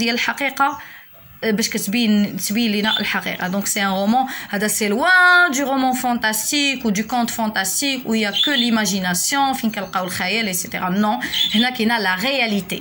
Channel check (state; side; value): identical; both; correlation 1.00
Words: الحقيقة باش تبين لنا الحقيقه. دونك سي ان رومان هذا سي لوان دو رومان فانتاستيك و دو كونت فانتاستيك و يا كو ليماجيناسيون فين كنلقاو الخيال ايتترا. نو هنا كاينه لا